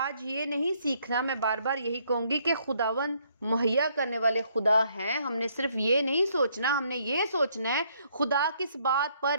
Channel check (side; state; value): both; inverted; correlation -0.69